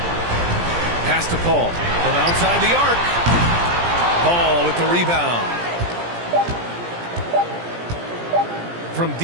Pass to Paul from outside the arc. Paul with the rebound. From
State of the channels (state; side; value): late; left; 17 ms